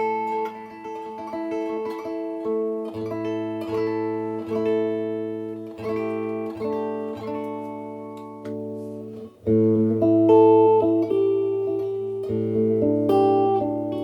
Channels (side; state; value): both; identical; correlation 1.00